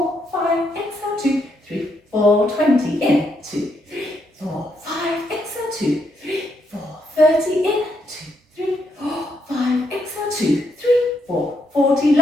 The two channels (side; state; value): both; normal; correlation 0.77